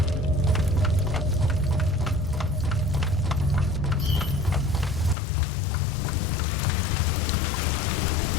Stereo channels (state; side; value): drops out; right; at 5.2 s